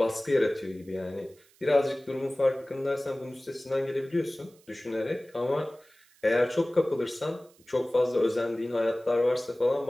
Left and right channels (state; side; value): noise; right; hiss, 30 dB below the sound